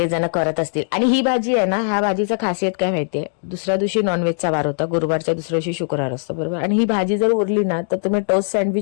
करत असतील. आणि ही भाजी आहे ना, ह्या भाजीचं खासियत काय माहितीये, दुसऱ्या दिवशी नॉनव्हेजचा वार होता, गुरुवारच्या दुसऱ्या दिवशी शुक्रवार असतो, बरोबर. आणि ही भाजी जर उरली ना तर तुम्ही टोस्ट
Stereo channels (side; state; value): right; silent; digital silence